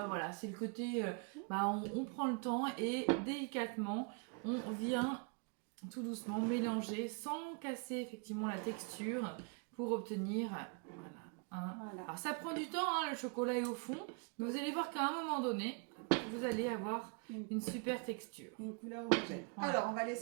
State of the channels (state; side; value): quieter; left; 35.1 dB